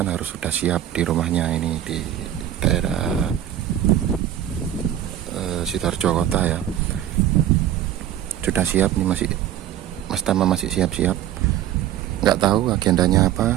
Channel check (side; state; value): left; quieter; 11.5 dB